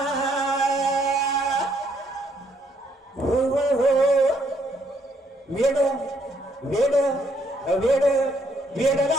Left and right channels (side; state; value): both; normal; correlation 0.70